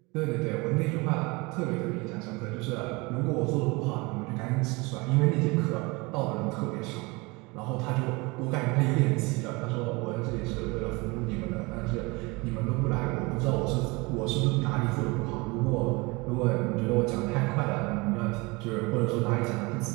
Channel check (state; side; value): quieter; left; 25.6 dB